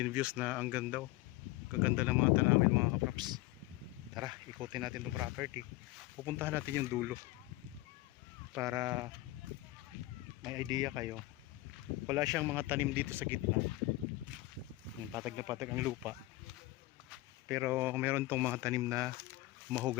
views na ang ganda, oh. Kaganda ng mga tanawin mga kapraps. Tara, ikutin natin itong property. Pupuntahan natin yung dulo para may idea kayo. Wala siyang mga tanim dito sa gitna. Patag na patag ang lupa. Pero meron tong mga tanim na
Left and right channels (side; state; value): right; quieter; 18.6 dB